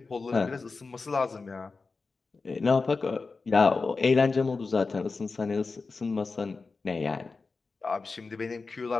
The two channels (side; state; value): right; quieter; 4.2 dB